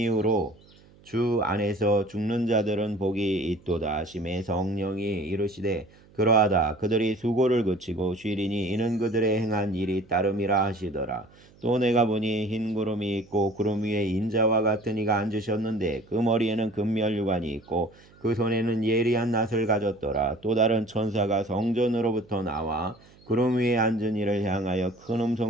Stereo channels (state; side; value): noise; right; hum, 27 dB below the sound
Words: 주 안에서 죽는 자들은 복이 있도다 하심에 성령이 이르시되 그러하다. 그들이 수고를 그치고 쉬리니 이는 그들의 행한 일이 따름이라 하시더라. 또 내가 보니 흰 구름이 있고 구름 위에 인자와 같은 이가 앉으셨는데 그 머리에는 금멸유관이 있고 그 손에는 예리한 낫을 가졌더라. 또 다른 천사가 성전으로부터 나와 구름 위에 앉은 이를 향하여 큰